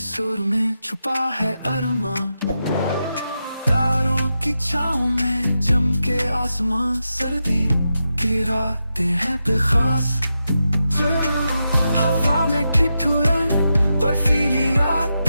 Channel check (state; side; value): inverted; both; correlation -0.88